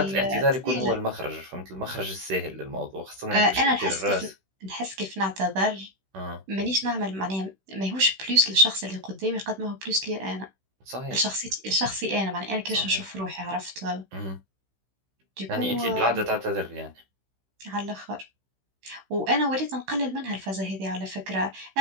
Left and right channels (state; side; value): late; left; 16 ms